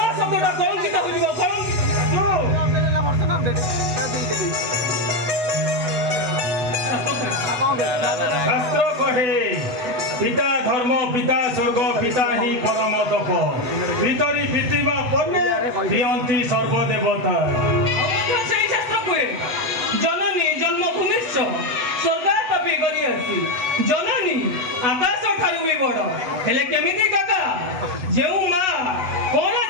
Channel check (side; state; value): left; late; 8.0 ms